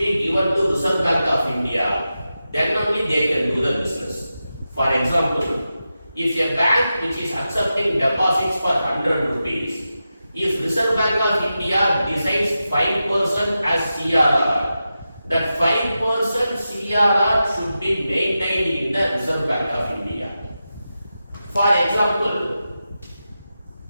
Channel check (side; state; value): both; inverted; correlation -0.91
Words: given to Reserve Bank of India, then only they can do the business. For example, if a bank which is accepting deposits for 100 rupees, if Reserve Bank of India decides 5% as CRR, that 5% CRR should be maintained in the Reserve Bank of India. For example,